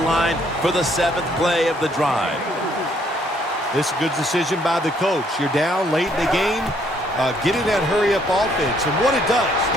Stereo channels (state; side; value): normal; both; correlation 0.67